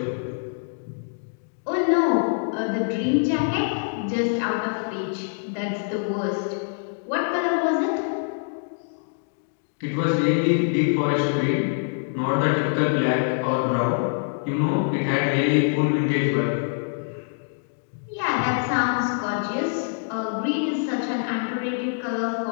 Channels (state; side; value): silent; right; digital silence